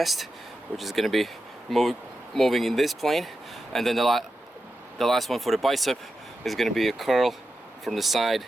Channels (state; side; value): normal; both; correlation 0.90